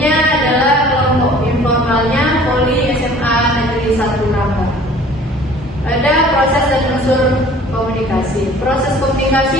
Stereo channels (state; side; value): normal; both; correlation 0.50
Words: adalah kelompok informalnya Poli SMA Negeri 1 Rangga. Ada proses dan unsur komunikasi. Proses